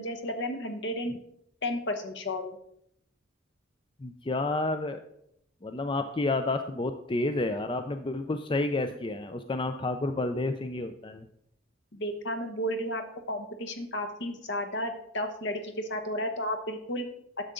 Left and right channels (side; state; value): both; normal; correlation 0.27